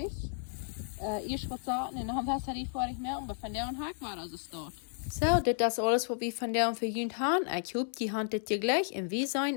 Erst was sagen, und dann Batterie fertig merken, aber von der und Hack war also dort. So, das ist alles, was wir von der und für Jünd haben. Ich hoffe, die handelt dir gleich und wir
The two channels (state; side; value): silent; right; digital silence